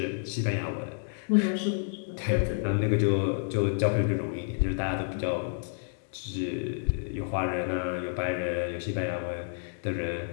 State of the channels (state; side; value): silent; right; digital silence